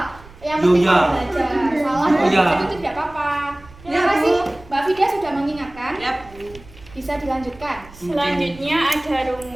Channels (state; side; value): noise; right; rumble, 21 dB below the sound